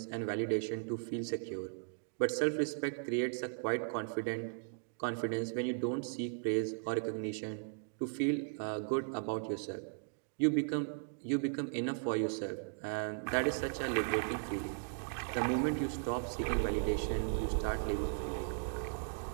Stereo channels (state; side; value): silent; left; digital silence